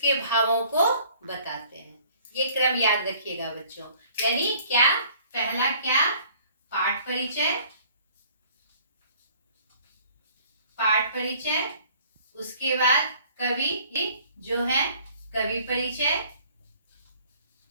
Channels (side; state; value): both; inverted; correlation -0.55